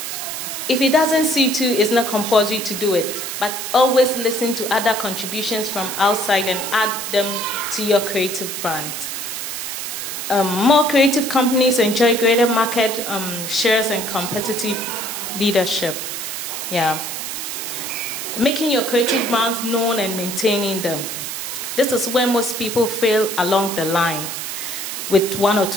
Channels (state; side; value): noise; right; hiss, 5 dB below the sound